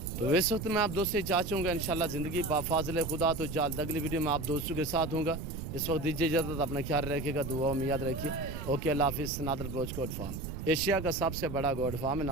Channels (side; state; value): right; noise; rumble, 7 dB below the sound